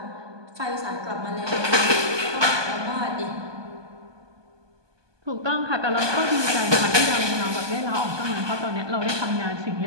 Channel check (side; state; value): left; late; 1.2 ms